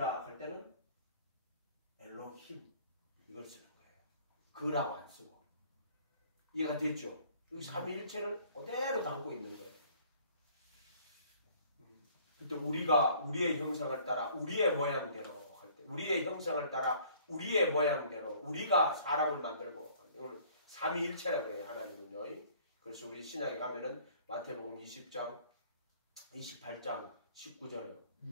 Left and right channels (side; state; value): both; inverted; correlation -0.55